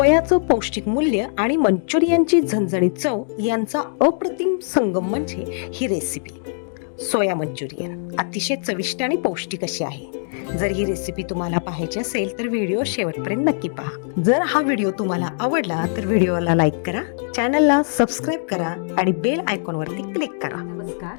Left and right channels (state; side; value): silent; right; digital silence